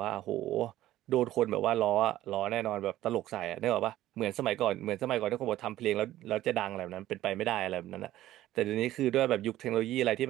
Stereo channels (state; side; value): quieter; left; 14.3 dB